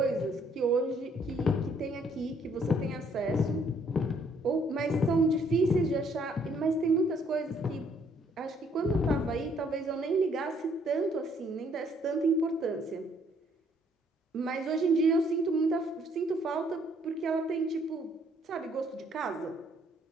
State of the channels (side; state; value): both; normal; correlation 0.66